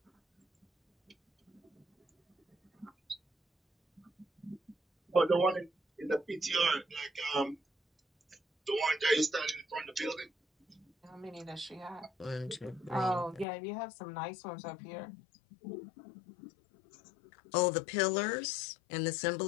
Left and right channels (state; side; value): drops out; right; at 13.5 s